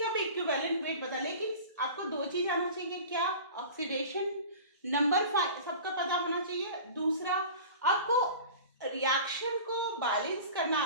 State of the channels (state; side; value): inverted; both; correlation -0.38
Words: भी इक्विवेलेंट वेट बता, लेकिन आपको दो चीज आना चाहिए, क्या ऑक्सीडेशन नंबर सबका पता होना चाहिए, दूसरा आपको रिएक्शन को बैलेंस करना